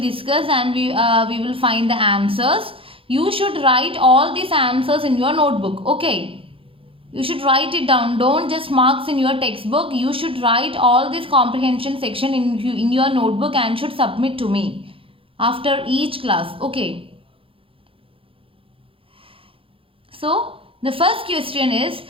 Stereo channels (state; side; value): late; left; 0.26 ms